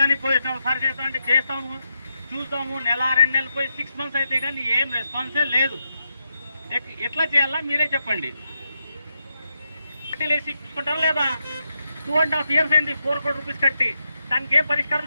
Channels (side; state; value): both; inverted; correlation -0.84